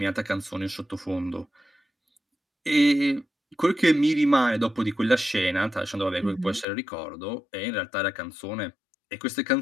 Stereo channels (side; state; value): right; drops out; at 6.7 s